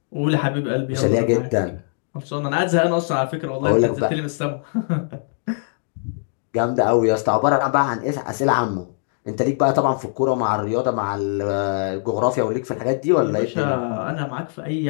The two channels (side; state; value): right; silent; digital silence